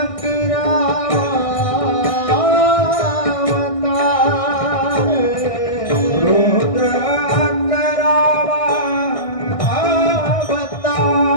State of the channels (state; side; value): late; right; 1.6 ms